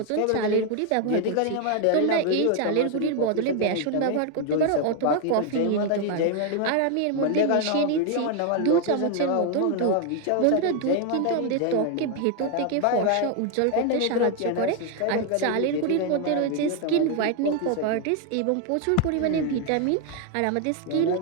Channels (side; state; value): both; different; correlation 0.00